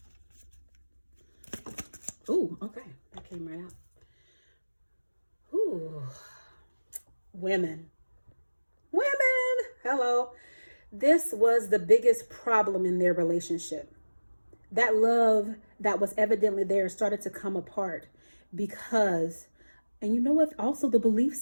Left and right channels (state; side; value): inverted; both; correlation -1.00